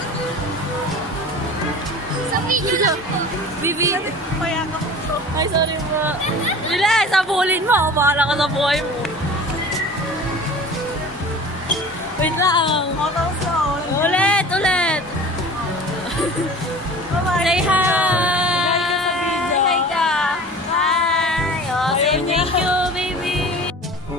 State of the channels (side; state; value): both; normal; correlation 0.40